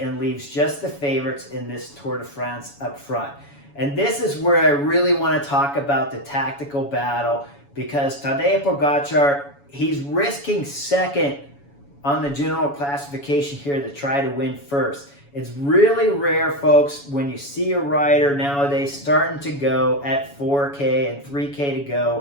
leaves just the favorites in this Tour de France up front. And this is where I really want to talk about the tactical battle, because Tadej Pogačar, he's risking second on the general classification here to try to win first. It's really rare, folks, when you see a rider nowadays starting to go at 4K and 3K to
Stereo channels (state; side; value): late; right; 7.1 ms